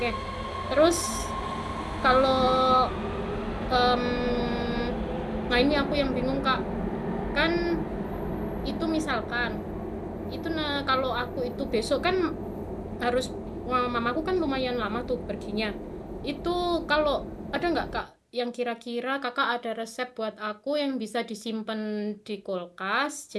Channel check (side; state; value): both; identical; correlation 1.00